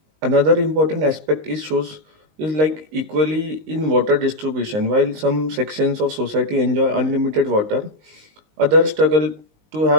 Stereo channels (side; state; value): left; late; 19 ms